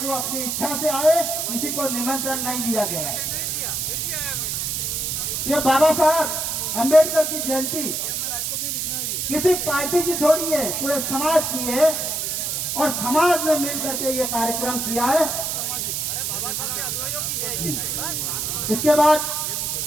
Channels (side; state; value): right; noise; hiss, 1 dB below the sound